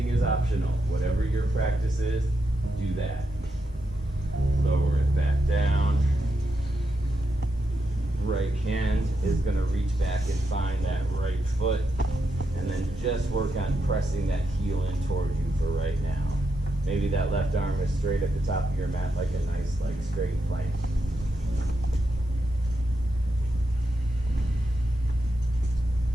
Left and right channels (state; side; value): normal; both; correlation 0.84